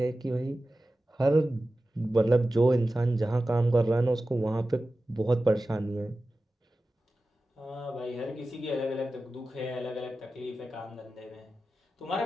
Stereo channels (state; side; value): normal; both; correlation 0.94